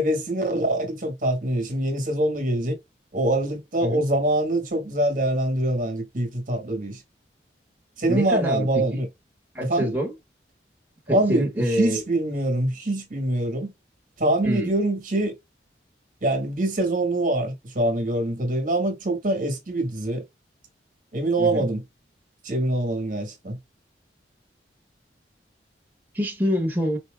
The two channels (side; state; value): both; normal; correlation 0.45